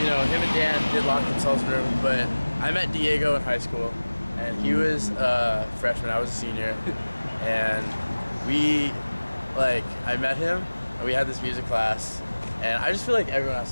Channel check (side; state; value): both; inverted; correlation -1.00